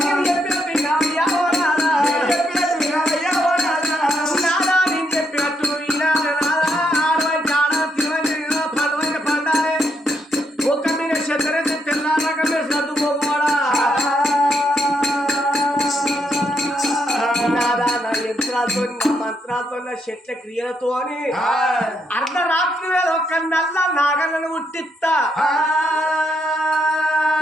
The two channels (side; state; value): both; normal; correlation 0.77